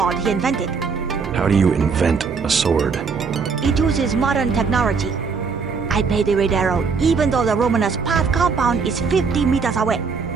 he invented. How do you invent a sword? It uses modern technology. I paid the Red Arrow even though the luminous path compound is 50 meters away.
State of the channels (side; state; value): left; quieter; 5.3 dB